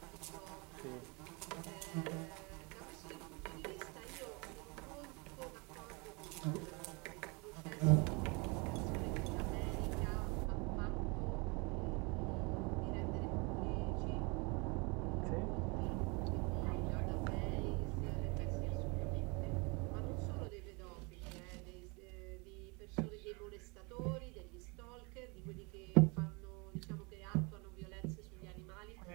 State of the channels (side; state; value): left; quieter; 29.5 dB